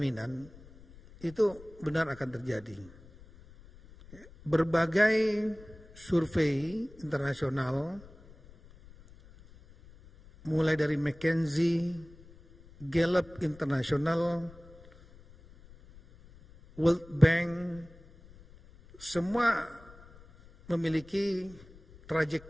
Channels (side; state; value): left; noise; rumble, 22 dB below the sound